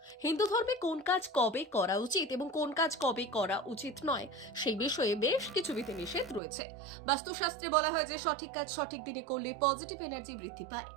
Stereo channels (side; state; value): left; drops out; at 6.4 s